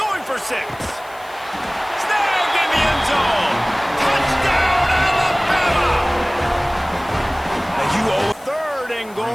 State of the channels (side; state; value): left; noise; hiss, 24 dB below the sound